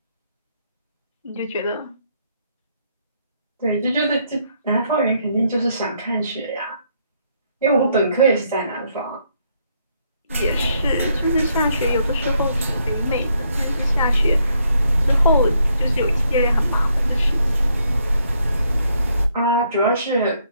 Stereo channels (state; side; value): inverted; both; correlation -0.73